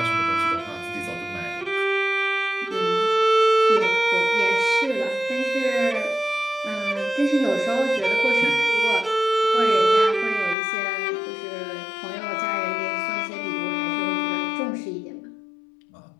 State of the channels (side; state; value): right; drops out; at 10.6 s